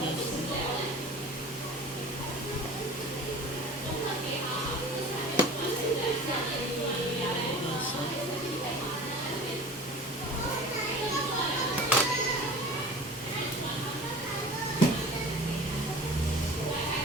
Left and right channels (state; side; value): normal; both; correlation 0.39